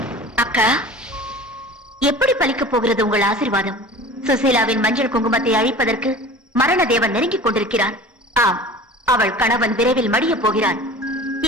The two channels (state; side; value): normal; both; correlation 0.40